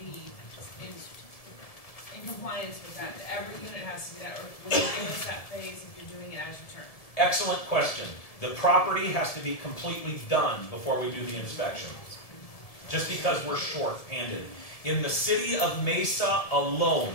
be in compliance with that? Every unit has to be that, or will you give us that phase if you're doing it as you turn? Excellent question. The property has to be completely done before we do the inspection. Just because we're short-handed. In the city of Mesa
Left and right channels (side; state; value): right; late; 1.7 ms